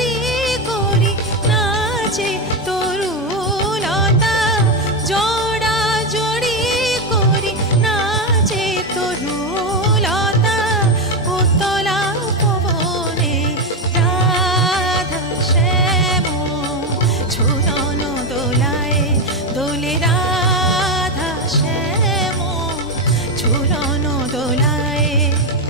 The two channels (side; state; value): both; normal; correlation 0.10